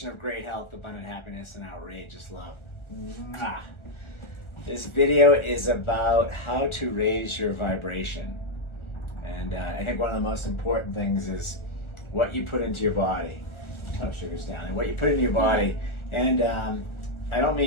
of Great Health, Abundant Happiness, and Outrageous Love. Mwah. This video is about how to raise your vibration. And I think one of the most important things is what you put into your body. Oh, sugar's down. And what you put into your body. And I don't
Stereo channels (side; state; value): right; late; 1.4 ms